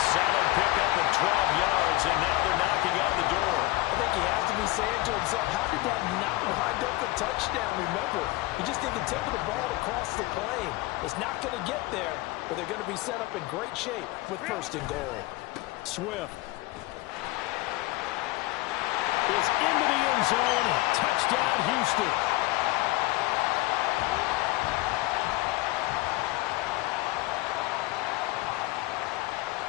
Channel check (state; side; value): quieter; right; 20.0 dB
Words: solid pickup of 12 yards, and now they're knocking on the door. I think he has to be saying to himself, how did that not wind up a touchdown? Remember, he just did the tip of the ball across the plane. It's not going to get there, but they're going to be set up in great shape with first and goal. Swift is into the end zone. Touchdown, Houston.